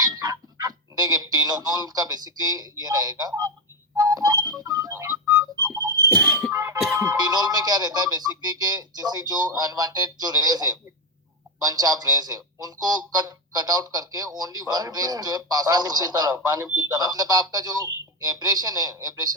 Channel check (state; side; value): normal; both; correlation 0.10